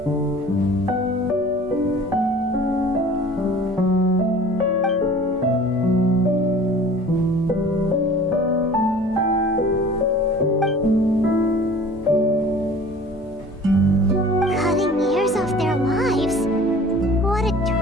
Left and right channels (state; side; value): normal; both; correlation 0.45